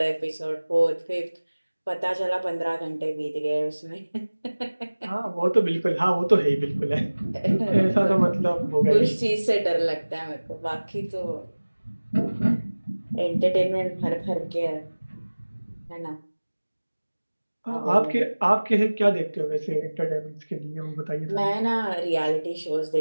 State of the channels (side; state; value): both; inverted; correlation -1.00